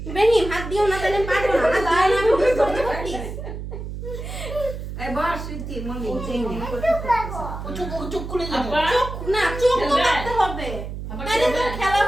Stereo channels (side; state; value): right; noise; hum, 8 dB below the sound